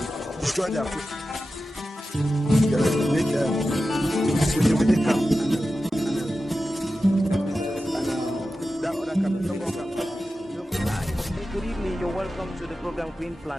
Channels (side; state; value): both; normal; correlation 0.93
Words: destroy their food. Make camp. That other camp, Good evening, you're welcome to the program Green